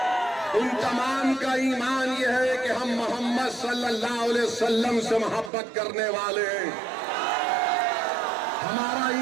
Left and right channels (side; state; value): left; drops out; at 5.5 s